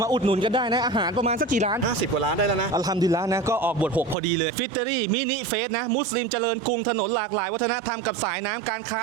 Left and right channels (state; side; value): drops out; left; at 4.2 s